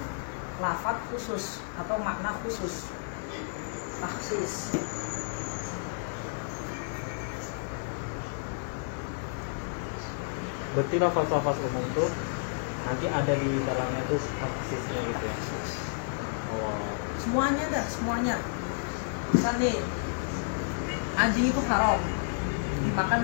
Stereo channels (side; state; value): right; silent; digital silence